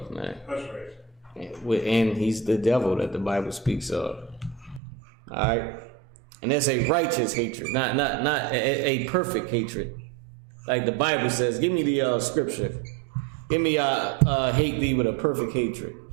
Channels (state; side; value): drops out; left; at 4.8 s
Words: man. That's right. And he's the devil that the Bible speaks of. All right, and that's a righteous hatred, not a perfect hatred, like the Bible says. Give me the scripture. Give me hate thee with a perfect hatred.